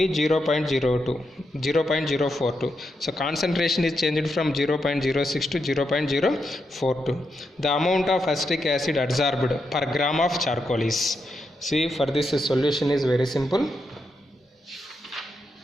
0.042. So concentration is changed from 0.06 to 0.042. The amount of acetic acid adsorbed per gram of charcoal is. See, for this solution is very simple.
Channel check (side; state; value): both; normal; correlation 0.84